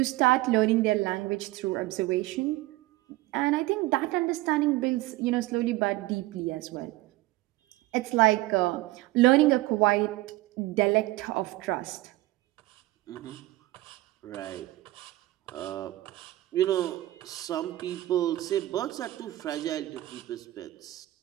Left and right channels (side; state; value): left; quieter; 18.0 dB